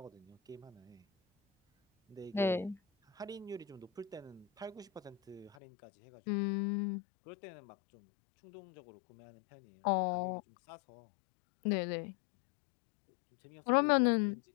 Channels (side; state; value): right; drops out; at 5.6 s